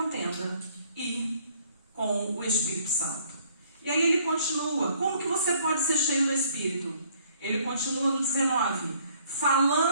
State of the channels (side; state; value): both; inverted; correlation -0.62